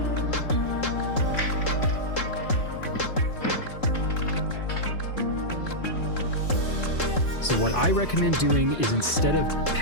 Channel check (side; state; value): right; late; 3.7 ms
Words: I recommend doing is, instead of